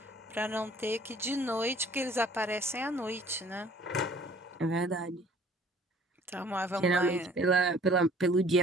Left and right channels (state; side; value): normal; both; correlation 0.54